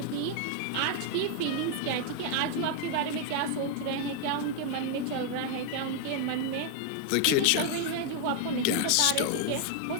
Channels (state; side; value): different; both; correlation 0.00